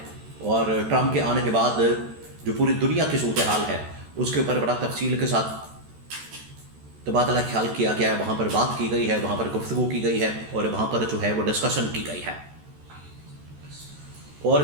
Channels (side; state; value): left; late; 13 ms